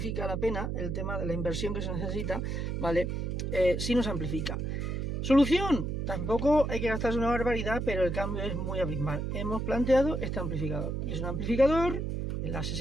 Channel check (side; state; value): right; noise; hum, 2 dB below the sound